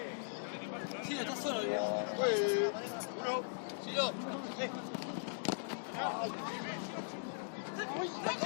Sí, está solo. ¡Uy! 1, 2.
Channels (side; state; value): right; silent; digital silence